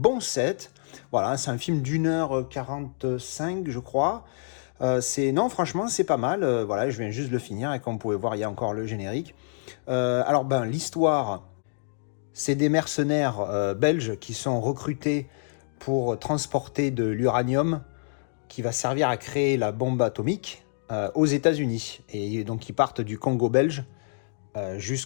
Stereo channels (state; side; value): silent; right; digital silence